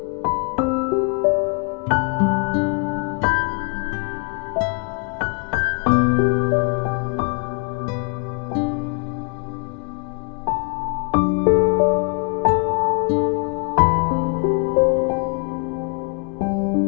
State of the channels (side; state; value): right; quieter; 36.9 dB